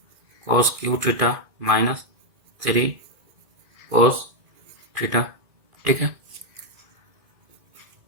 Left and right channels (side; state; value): left; late; 2.1 ms